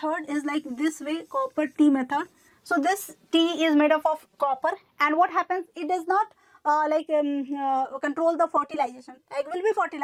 is like this way. Copper T method. So this T is made up of copper, and what happens? It does not control the fertilization. Egg will be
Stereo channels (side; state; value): both; identical; correlation 1.00